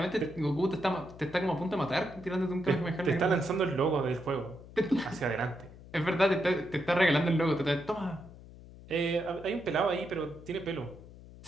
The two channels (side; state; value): left; noise; hum, 18 dB below the sound